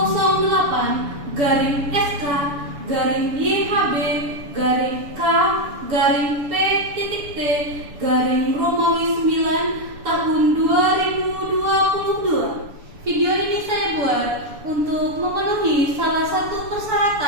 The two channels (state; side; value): late; left; 7.0 ms